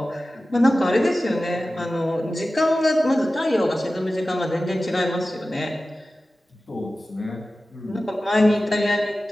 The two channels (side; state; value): both; normal; correlation 0.95